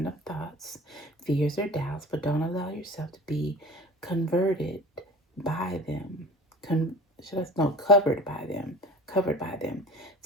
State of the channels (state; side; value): normal; both; correlation 0.40